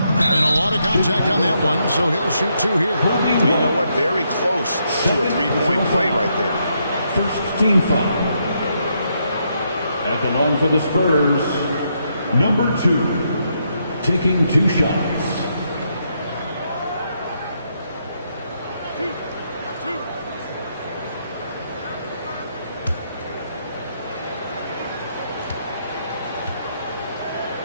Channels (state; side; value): inverted; both; correlation -0.77